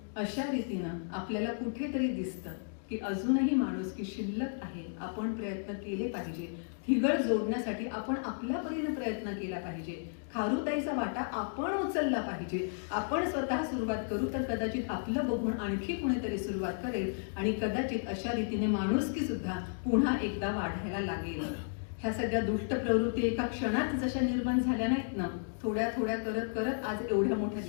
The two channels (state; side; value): silent; right; digital silence